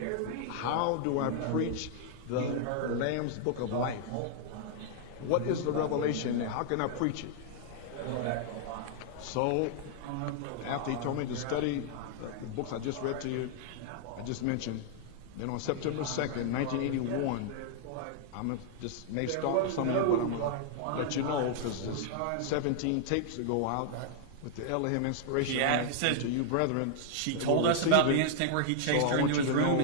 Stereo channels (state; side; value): different; both; correlation -0.01